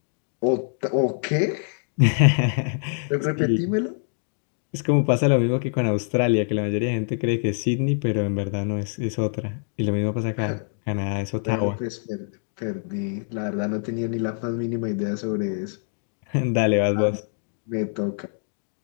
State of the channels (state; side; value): silent; right; digital silence